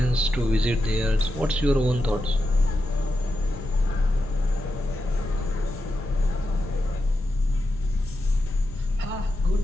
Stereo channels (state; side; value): normal; both; correlation 0.88